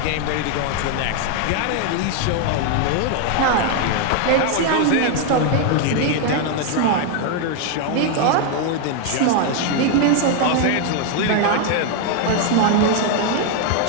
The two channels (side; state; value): both; different; correlation 0.01